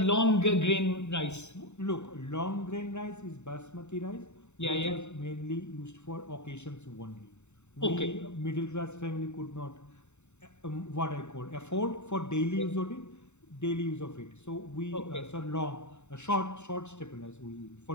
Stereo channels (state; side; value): late; right; 0.83 ms